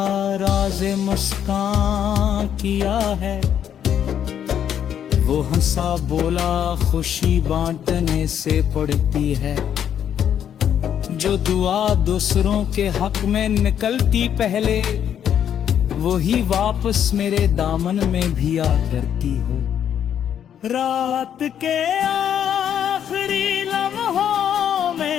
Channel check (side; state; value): right; quieter; 9.3 dB